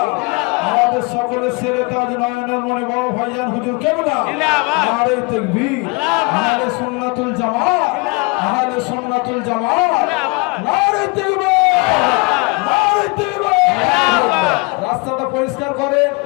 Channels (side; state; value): right; quieter; 29.1 dB